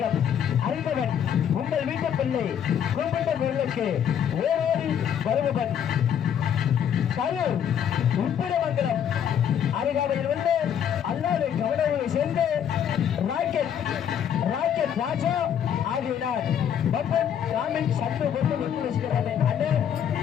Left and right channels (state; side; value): quieter; right; 8.9 dB